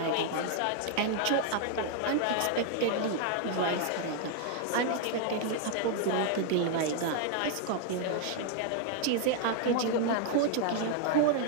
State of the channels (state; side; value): different; both; correlation 0.00